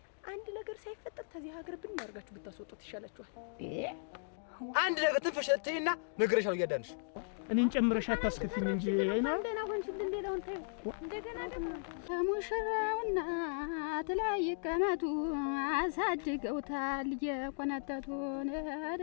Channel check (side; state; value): right; silent; digital silence